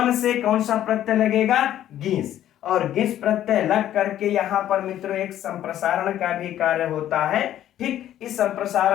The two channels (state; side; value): quieter; right; 11.9 dB